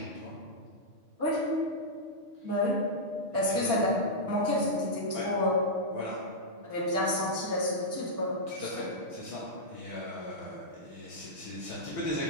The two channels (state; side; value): late; left; 6.1 ms